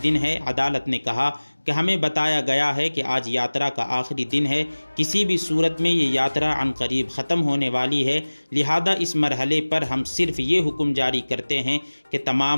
دن ہے۔ عدالت نے کہا کہ ہمیں بتایا گیا ہے کہ آج یاترا کا آخری دن ہے، کسی بھی صورت میں یہ یاترا عنقریب ختم ہونے والی ہے، لہذا اس مرحلے پر ہم صرف یہ حکم جاری کرتے ہیں کہ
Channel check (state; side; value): inverted; both; correlation -1.00